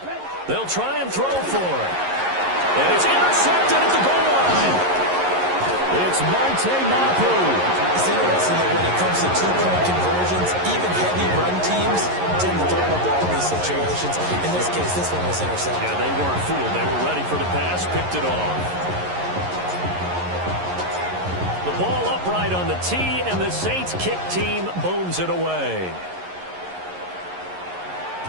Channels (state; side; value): late; left; 11 ms